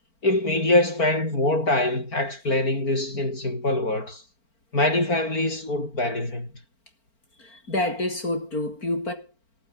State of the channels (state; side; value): late; right; 4.4 ms